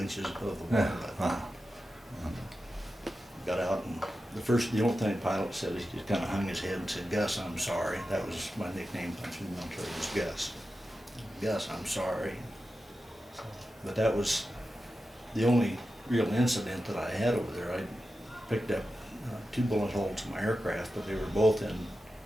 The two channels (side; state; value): both; normal; correlation 0.91